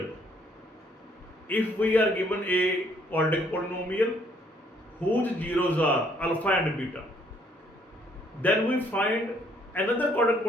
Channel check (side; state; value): both; normal; correlation 0.66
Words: if we are given a quadratic polynomial whose zeros are alpha and beta, then we find another quadratic